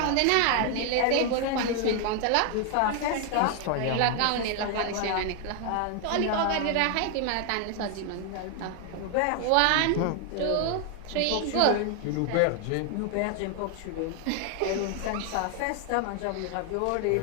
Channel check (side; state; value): both; different; correlation 0.00